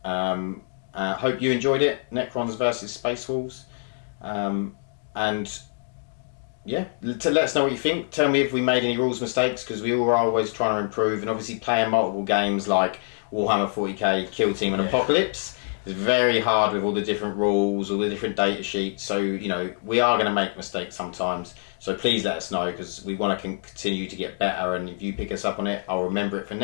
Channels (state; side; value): silent; right; digital silence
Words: Hope you enjoyed it. Necrons versus Space Wolves. And yeah, to let us know what you think. Tell me if we made any rules mistakes, because we all are always trying to improve. And obviously playing multiple games like Warhammer 40k, Kill Team and Apocalypse is very hard with all the different rules, all the different data sheets. So, you know, we are going to make mistakes sometimes. So please let us know, because we want to continue to get better. And if you pick us up on it, I'll remember it for